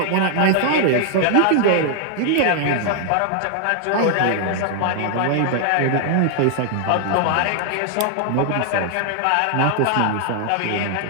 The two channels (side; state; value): both; different; correlation 0.00